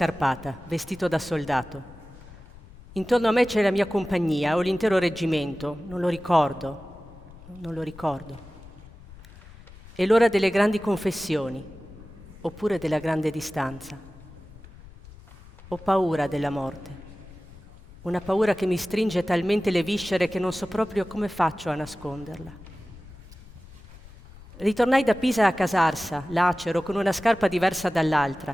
vestito da soldato. Intorno a me c'è la mia compagnia o l'intero reggimento, non lo ricordo. È l'ora delle grandi confessioni, oppure della grande distanza. Ho paura della morte, una paura che mi stringe talmente le viscere che non so proprio come faccio a nasconderla. Ritornai da Pisa a Casarsa, lacero, con una scarpa diversa dall'altra,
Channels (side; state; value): left; noise; rumble, 20 dB below the sound